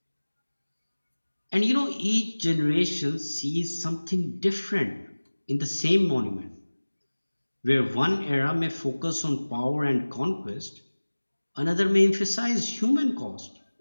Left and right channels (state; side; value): inverted; both; correlation -1.00